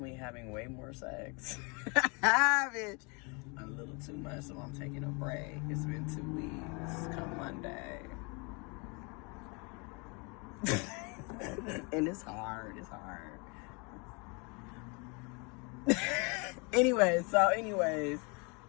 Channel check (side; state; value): right; quieter; 31.6 dB